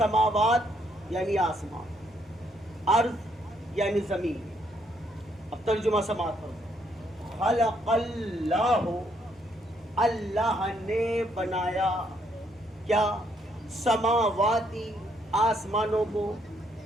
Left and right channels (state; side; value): normal; both; correlation 0.72